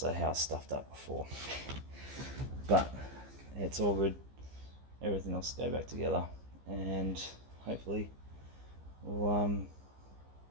how I stuffed up before. But it's all good. Everything else will go back together, and hopefully I'll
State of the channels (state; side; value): late; left; 15 ms